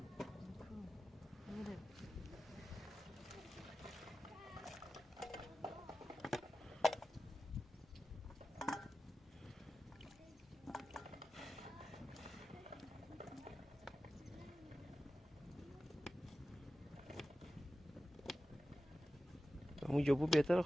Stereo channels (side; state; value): both; normal; correlation 0.94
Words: اونجا بود بهتره.